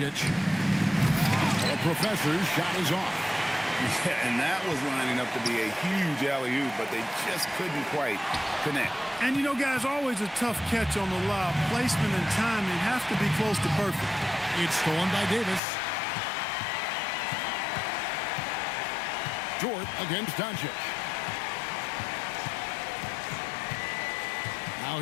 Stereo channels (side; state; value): right; drops out; at 15.6 s